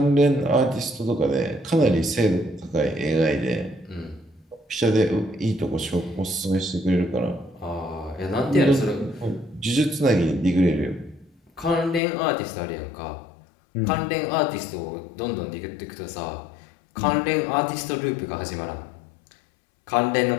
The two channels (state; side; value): drops out; right; at 12.0 s